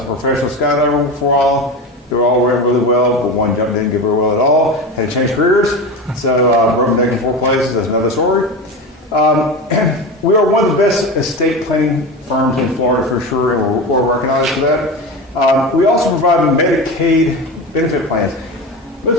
a professional skydiver for a while. They were all went really well, but one jump didn't go very well at all. Had to change careers, so broke my neck in 4 places. That's another story. We are one of the best estate planning firms in Florida for sure, and we're recognized for that. We also provide Medicaid benefit plans. Most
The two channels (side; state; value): both; normal; correlation 0.24